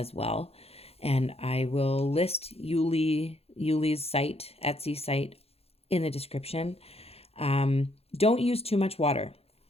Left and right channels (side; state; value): right; late; 0.29 ms